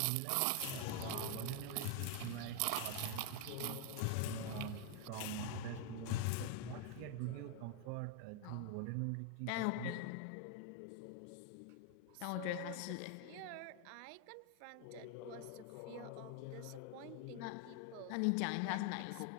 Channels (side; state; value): both; different; correlation 0.00